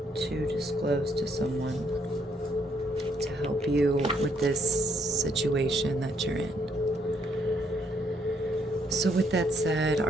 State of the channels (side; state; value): both; normal; correlation 0.71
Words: to disclose to someone to help you with this situation that you're in. So with that said,